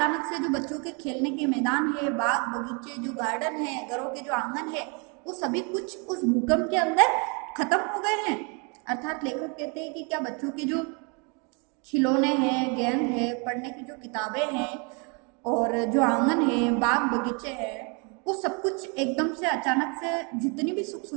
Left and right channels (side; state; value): left; quieter; 33.8 dB